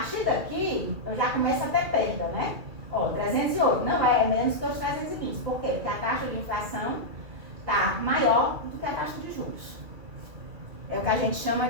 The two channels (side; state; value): left; late; 2.3 ms